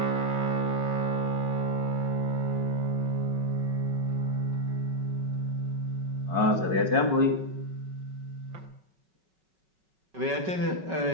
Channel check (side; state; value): left; late; 5.3 ms